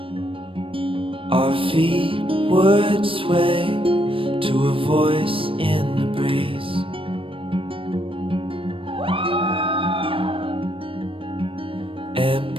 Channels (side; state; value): left; late; 0.26 ms